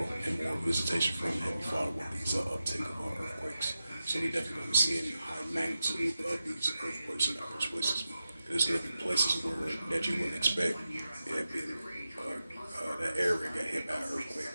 and more visitation from Heavenly Father with these uptick of earthquakes. So we definitely going to be seeing high magnitude of these earthquakes in various places. There's going to be places where that you wouldn't expect. That area got hit by an earthquake,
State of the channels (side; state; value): both; inverted; correlation -0.91